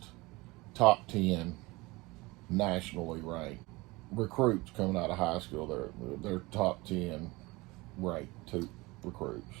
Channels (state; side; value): quieter; left; 22.7 dB